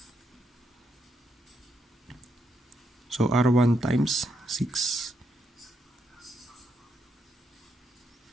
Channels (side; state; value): both; normal; correlation 0.79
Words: So, R1 times 6.